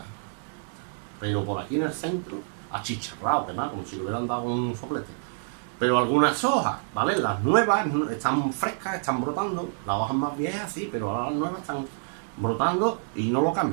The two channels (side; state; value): left; silent; digital silence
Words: pero por aquí en el centro, achicharrado, quemado, como si le hubieran dado un soplete. Pero algunas hojas, ¿vale? Las nuevas están frescas, están brotando, las hojas más viejas sí, pero ahora las nuevas están brotando y no lo